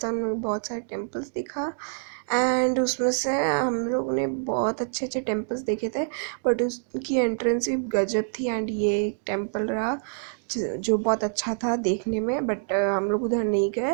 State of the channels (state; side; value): silent; left; digital silence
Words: हमने बहुत सारे टेम्पल्स देखा। एंड उसमें से हम लोग ने बहुत अच्छे अच्छे टेम्पल्स देखे थे, बट उसकी एंट्रेंस भी गजब थी। एंड ये एक टेम्पल रहा जो बहुत अच्छा था देखने में, बट हम लोग उधर नहीं